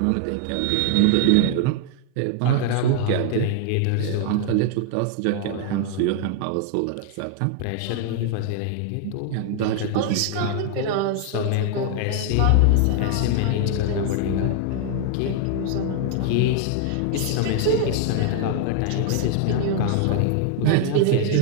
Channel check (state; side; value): different; both; correlation 0.00